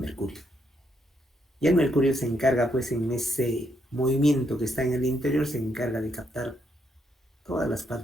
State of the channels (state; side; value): normal; both; correlation 0.76